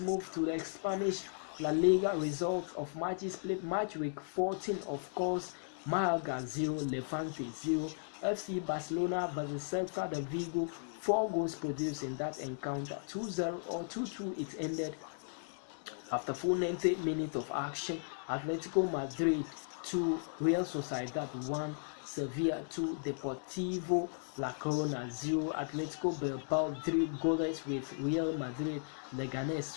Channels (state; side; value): silent; right; 54 dB below the other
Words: to the Spanish La Liga results of matches played. Match week 14, of course, Malaga 0, Levante 0. FC Barcelona versus Celta de Vigo, 4 goals produced in that encounter, 2-0 or 2-2 it ended. After full 90 minutes of action, Atletico Madrid 2, Real Sociedad 1, Sevilla 2, Deportivo La Corona 0, Atletico Bilbao 3 goalless with Real Madrid, Leganés